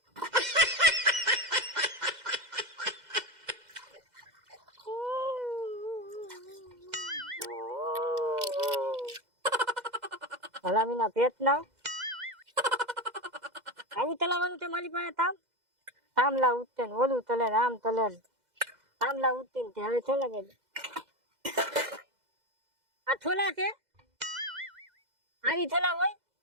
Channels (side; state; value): left; late; 2.0 ms